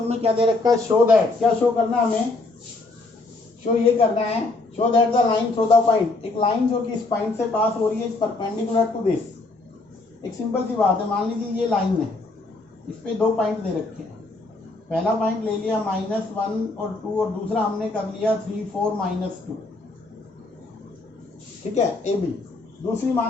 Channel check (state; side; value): quieter; right; 3.2 dB